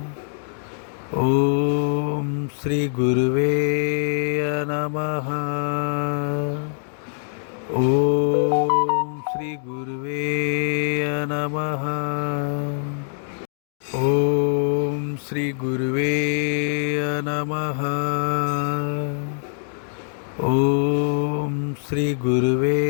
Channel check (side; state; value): right; silent; digital silence